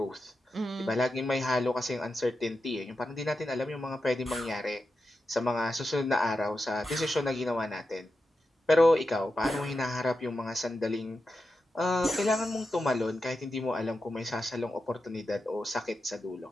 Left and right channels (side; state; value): both; normal; correlation 0.89